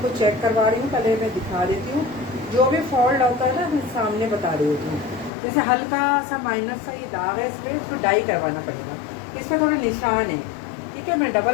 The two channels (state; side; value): drops out; right; at 5.3 s